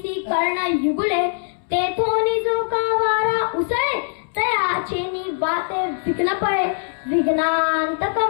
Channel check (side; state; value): right; silent; 65 dB below the other